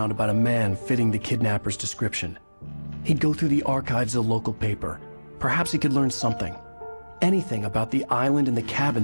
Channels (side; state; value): both; inverted; correlation -1.00